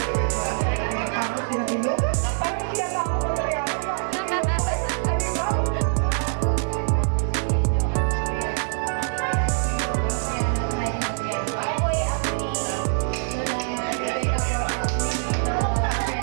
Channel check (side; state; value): left; silent; 62 dB below the other